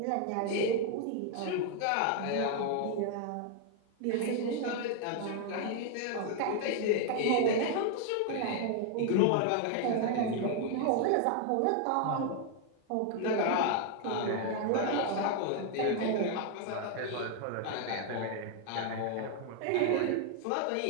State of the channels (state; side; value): different; both; correlation 0.00